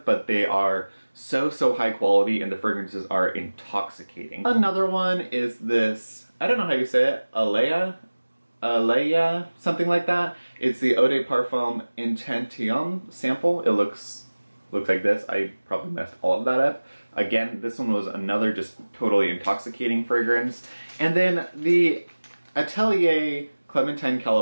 but they are so, so high quality, and the fragrances are intoxicating. Another one is this, I don't know how you say it, Alea? Aleya, something like that. It's the Eau de Parfum Intention sample. It looks like this. I probably messed all of that up. Again, this one was another just totally intoxicating fragrance. And then the Atelier Clementine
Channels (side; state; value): both; inverted; correlation -1.00